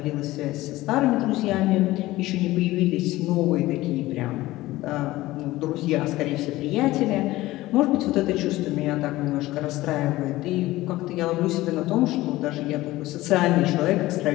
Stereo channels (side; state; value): right; quieter; 17.6 dB